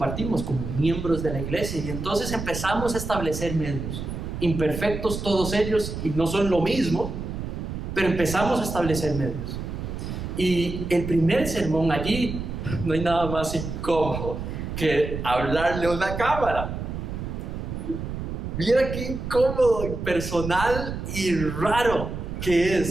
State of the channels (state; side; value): noise; right; rumble, 6 dB below the sound